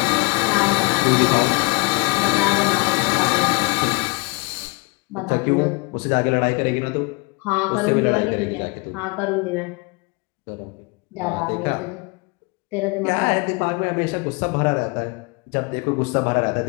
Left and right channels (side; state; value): right; quieter; 28.0 dB